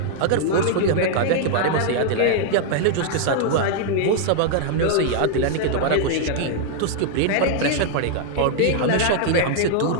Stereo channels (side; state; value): both; different; correlation 0.00